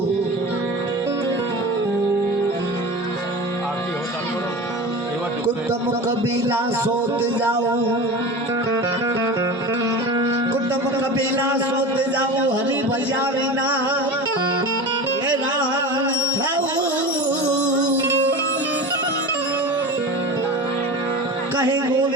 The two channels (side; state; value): both; normal; correlation 0.30